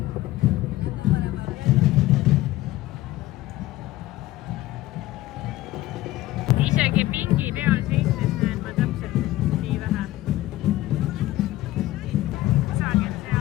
Isegi pingi peal seistes näen ma täpselt nii vähe. Kusagil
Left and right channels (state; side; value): quieter; right; 16.4 dB